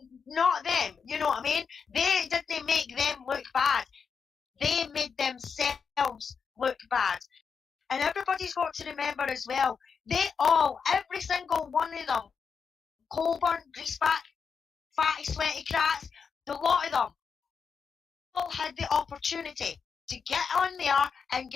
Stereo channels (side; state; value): right; quieter; 6.0 dB